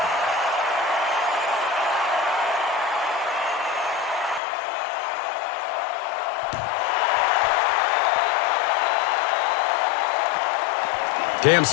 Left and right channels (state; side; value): drops out; right; at 4.4 s